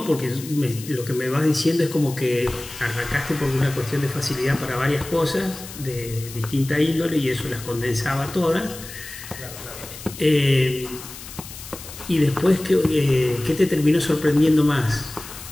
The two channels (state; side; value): noise; left; hiss, 14 dB below the sound